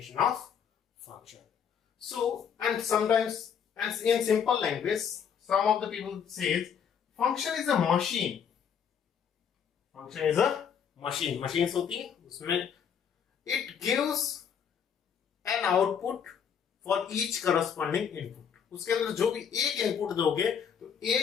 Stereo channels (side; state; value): right; quieter; 7.6 dB